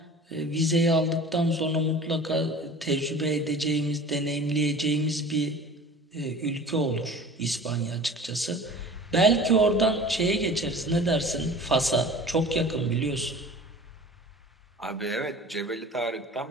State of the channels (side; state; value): both; normal; correlation 0.41